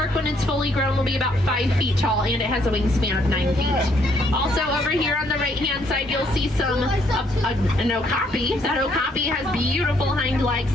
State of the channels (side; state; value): both; normal; correlation 0.69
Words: when it's fully grown, will be about 5 feet tall, and it has a wingspan of 9 feet. Also, over here on the right-hand side, you'll see an okapi. That okapi has beautiful hind legs,